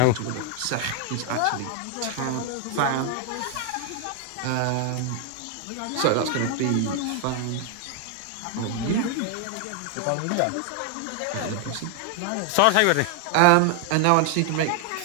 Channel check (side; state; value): both; different; correlation 0.00